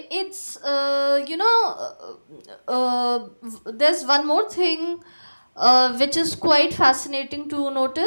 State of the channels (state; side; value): inverted; both; correlation -1.00